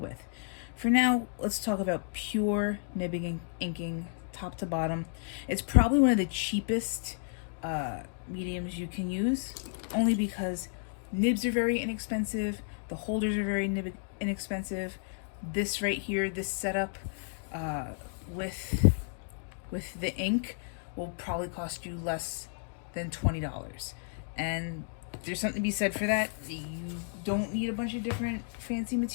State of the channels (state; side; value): silent; right; digital silence